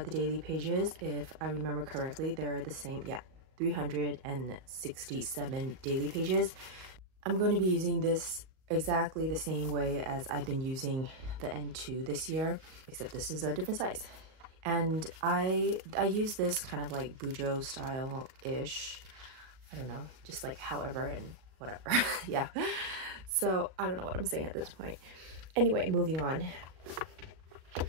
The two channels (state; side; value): late; left; 38 ms